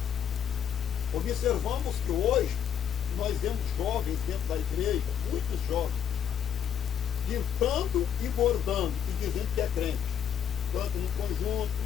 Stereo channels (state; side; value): quieter; right; 8.8 dB